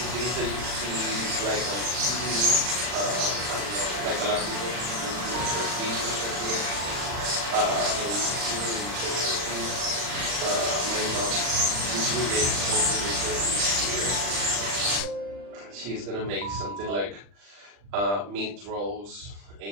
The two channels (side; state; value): left; late; 40 ms